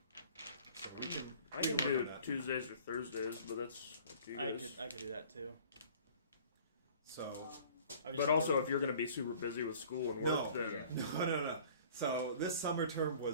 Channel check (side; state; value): both; inverted; correlation -0.50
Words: So I can do Tuesdays or Thursdays, but that's up to you guys. I could do that too. So But also, if you're going to be super busy with school and work, then no. So this summer term